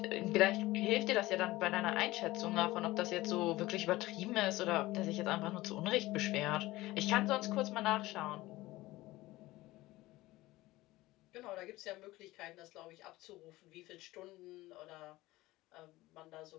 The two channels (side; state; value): right; quieter; 18.5 dB